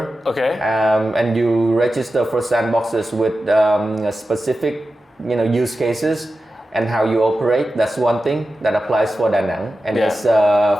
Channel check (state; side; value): normal; both; correlation 0.92